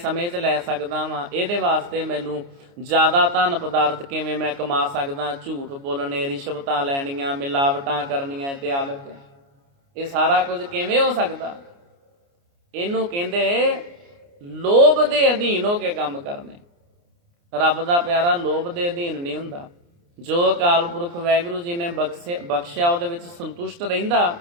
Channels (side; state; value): left; late; 29 ms